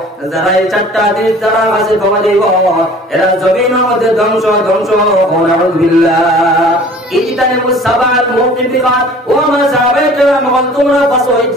যারা এই চারটা জিনিস যারা কাছে পাওয়া দিব এরা জমিনের মধ্যে ধ্বংস নাউযুবিল্লাহ ইজতানিবুস সাবাল মুবিকাত ও আমার সাহাবায়ে কেরাম তোমরা বাঁচো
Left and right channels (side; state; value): both; normal; correlation 0.47